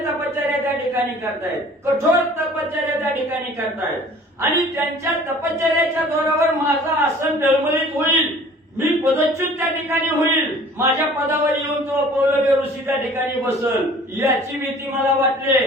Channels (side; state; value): both; normal; correlation 0.49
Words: तपश्चर्या त्या ठिकाणी करतायत कठोर तपश्चर्या त्या ठिकाणी करतायत आणि त्यांच्या तपश्चर्याच्या जोरावर माझं आसन डळमळीत होईल मी पदच्युत त्या ठिकाणी होईल माझ्या पदावर येऊन तो पौलव्य ऋषी त्या ठिकाणी बसल याची भीती मला वाटली